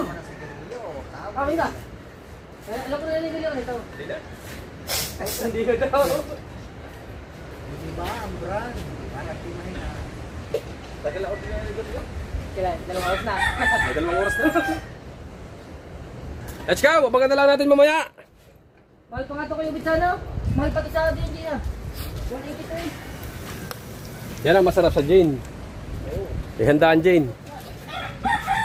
na sigarilyo. Okay ka? Alam ko na nilili ko nito. Hindi na. Hindi ko daw. Hindi ba ang brand? Hanap di man na. Tagal ako din na. Kailan? 2 oras na. May 2 oras na. Let's go! Abangan na lang natin mamaya. Mahal pa nga ito kayo bitsano. Mahal pa ito sa atin, hindi na. 180 to eh. Yan ang masarap sa Jane. Ihandaan Jane.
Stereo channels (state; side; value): identical; both; correlation 1.00